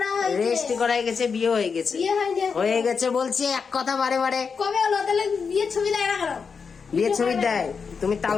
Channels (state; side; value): quieter; right; 5.6 dB